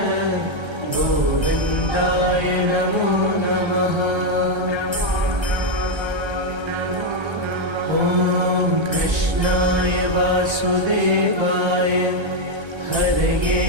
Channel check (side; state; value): left; late; 1.3 ms